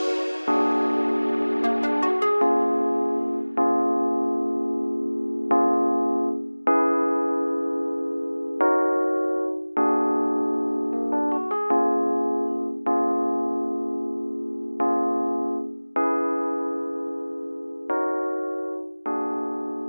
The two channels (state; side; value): inverted; both; correlation -1.00